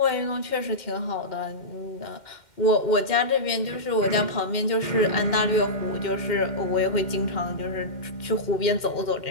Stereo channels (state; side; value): late; right; 2.1 ms